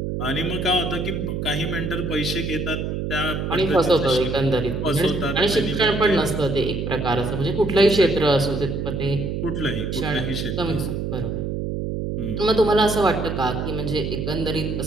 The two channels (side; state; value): right; noise; hum, 3 dB below the sound